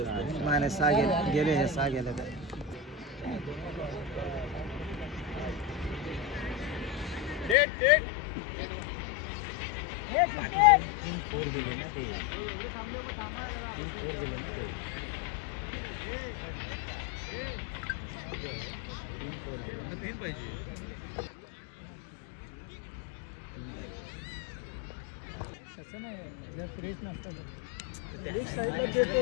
नाही 6 गेले हे 6 गेले तर तीन पाहिजे.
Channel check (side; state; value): right; drops out; at 7.6 s